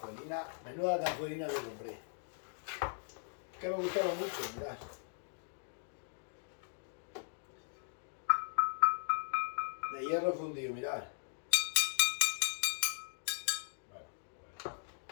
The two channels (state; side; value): silent; right; digital silence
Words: Menuda cazuelina que compré. Que me gustaba mucho, mirad. De hierro fundido, mirad. Bueno.